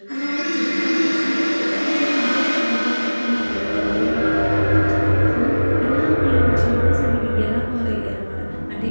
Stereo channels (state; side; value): inverted; both; correlation -1.00